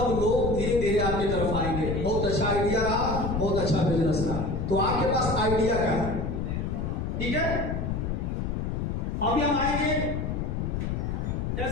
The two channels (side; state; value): left; noise; rumble, 2 dB below the sound